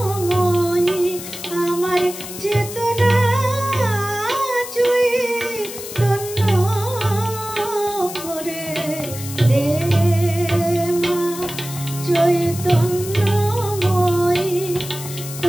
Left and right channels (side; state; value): left; noise; hiss, 11 dB below the sound